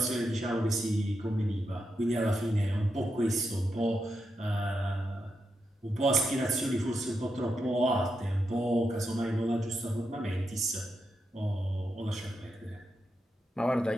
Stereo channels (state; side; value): normal; both; correlation 0.85